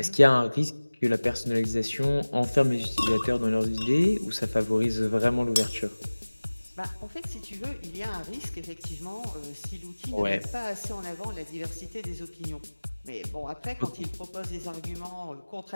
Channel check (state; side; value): inverted; both; correlation -1.00